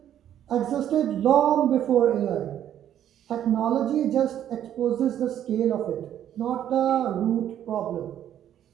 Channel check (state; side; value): quieter; left; 10.7 dB